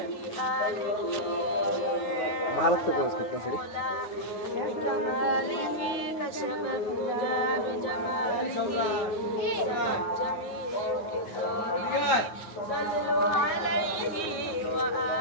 भारत से कोर्स कितना सीरी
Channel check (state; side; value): late; right; 9.5 ms